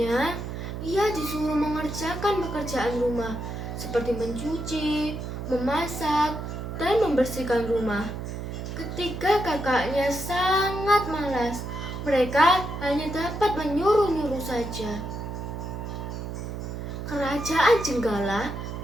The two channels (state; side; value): noise; right; hum, 6 dB below the sound